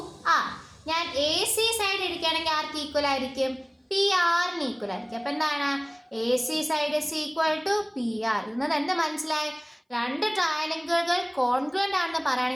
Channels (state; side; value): identical; both; correlation 1.00